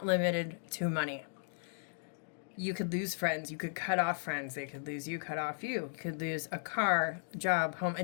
limited to money. You could lose friends. You could cut off friends. They could lose you, cut off you. You could lose a car, job, home.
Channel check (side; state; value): right; silent; digital silence